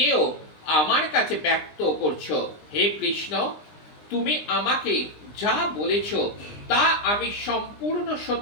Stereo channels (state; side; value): late; right; 20 ms